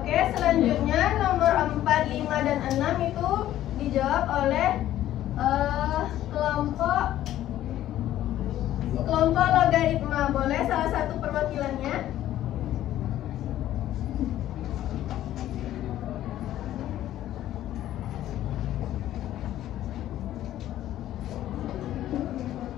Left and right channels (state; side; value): quieter; right; 13.0 dB